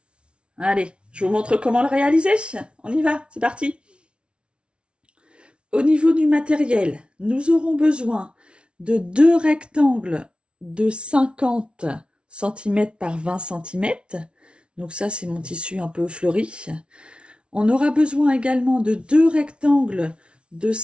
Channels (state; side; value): late; left; 0.058 ms